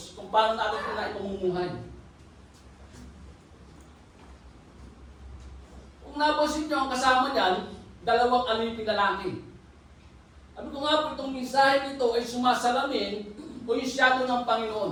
Kung paano natin ito na ipamumuhay. Kung napansin nyo ang kasama niyan, 2 aliping lalaki. Sabi ko nga po itong mensahe nito ay sumasalamin o yung shadow ng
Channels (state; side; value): identical; both; correlation 1.00